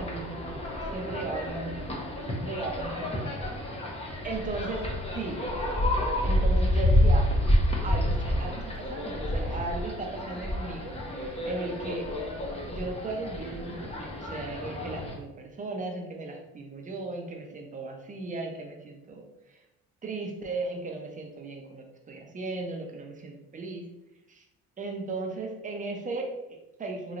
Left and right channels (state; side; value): normal; both; correlation 0.64